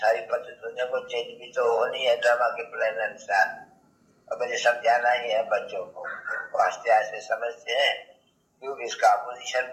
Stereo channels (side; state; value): both; identical; correlation 1.00